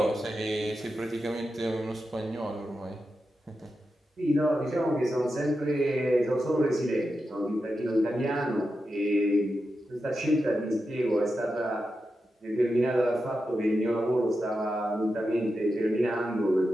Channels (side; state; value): both; normal; correlation 0.89